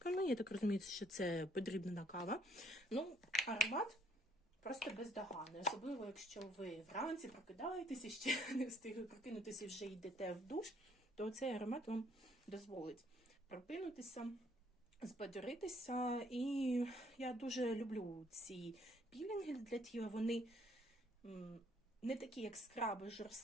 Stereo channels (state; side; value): normal; both; correlation 0.65